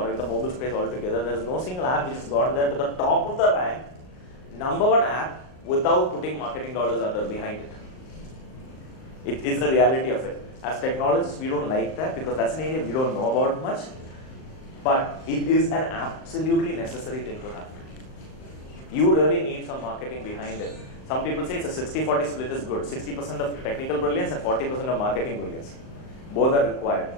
in the mobile space altogether. There's no single app which has gone there to the top of the rank, #1 app, without putting marketing dollars behind it. It is the reality of it. As technologists, we don't like that because that's an area we don't know about much. But it is an absolutely necessary thing to have. You really need some marketing behind it. Some people say it's a 60-40 split is good. 60% of technical brilliance and 40% of marketing brilliance. Both are required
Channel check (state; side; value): late; right; 38 ms